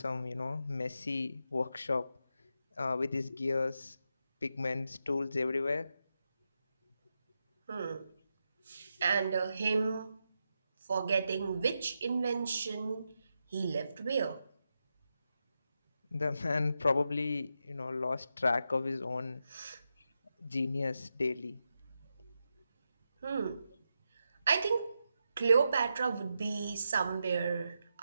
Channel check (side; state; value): both; inverted; correlation -0.87